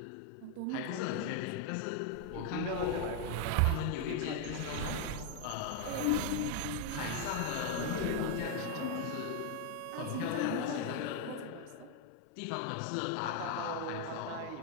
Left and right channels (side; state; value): both; different; correlation 0.01